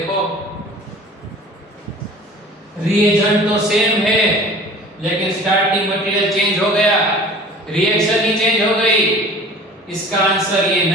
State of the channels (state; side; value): normal; both; correlation 0.44